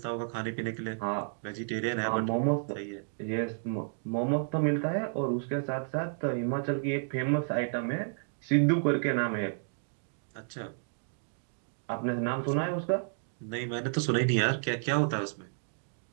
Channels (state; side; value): silent; left; digital silence